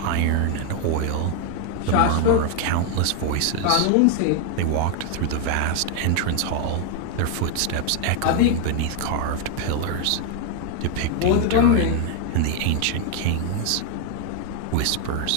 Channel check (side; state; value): both; different; correlation 0.00